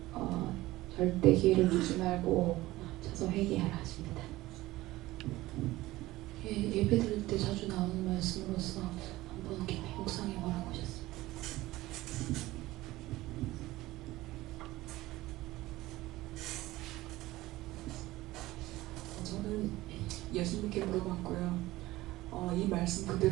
절대 기회를 주지 말고 쳐서 회개하라 하십니다. 예배 드릴 때 자주 나오는 말씀으로서 한번 깊이 묵상해 보라고 하셨습니다. 저는 예수님께 물어봤고요. 이 말씀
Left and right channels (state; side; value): quieter; left; 17.8 dB